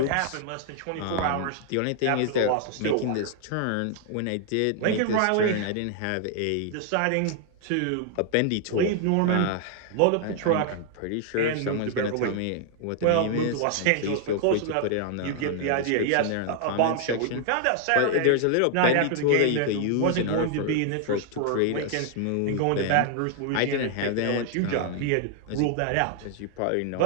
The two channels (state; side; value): different; both; correlation 0.00